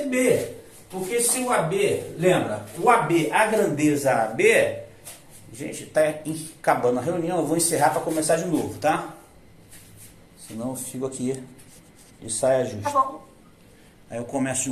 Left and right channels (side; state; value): both; identical; correlation 1.00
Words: Porque se o AB, lembra, o AB, a grandeza AB, gente, está acabando a reunião, eu vou encerrar para começar de novo, tá? Senão eu fico aqui de saia justa. Tá bom. Aí eu começo de